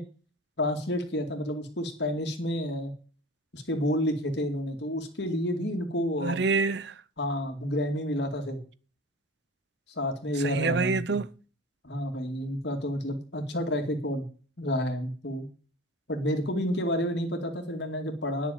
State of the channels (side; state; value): both; normal; correlation 0.37